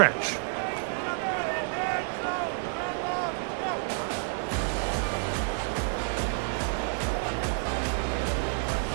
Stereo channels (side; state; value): left; silent; 58 dB below the other